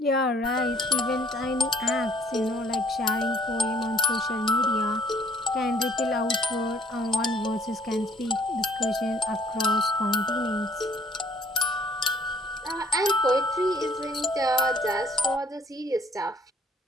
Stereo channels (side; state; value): both; normal; correlation 0.58